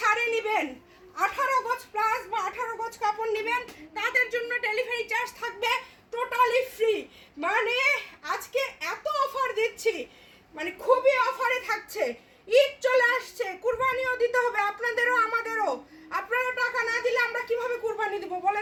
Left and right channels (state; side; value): identical; both; correlation 1.00